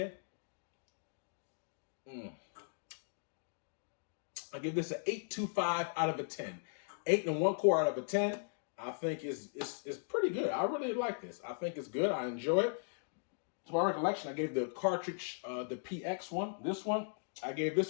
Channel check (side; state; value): right; silent; digital silence